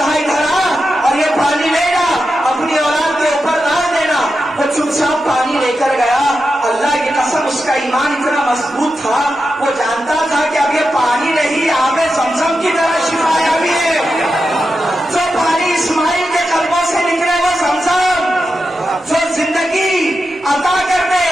ادھر آ اور یہ پانی لے جا، اپنی اولاد کے اوپر ڈال دینا. وہ چپ چاپ پانی لے کر گیا. اللہ کی قسم اس کا ایمان اتنا مضبوط تھا، وہ جانتا تھا کہ اب یہ پانی نہیں آب زمزم کی طرح شفا یابی ہے. جو پانی اسماعیل کے قلبوں سے نکلے وہ زمزم، جو زندگی عطا کر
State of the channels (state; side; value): normal; both; correlation 0.89